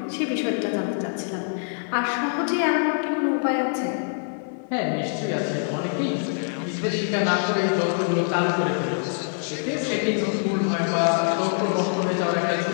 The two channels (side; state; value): right; silent; digital silence